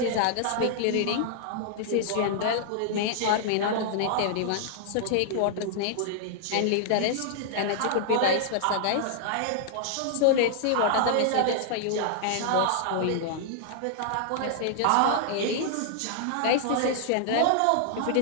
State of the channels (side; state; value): both; different; correlation -0.01